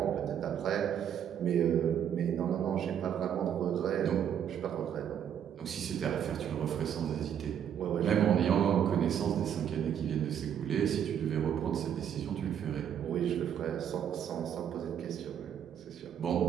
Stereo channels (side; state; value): left; quieter; 9.1 dB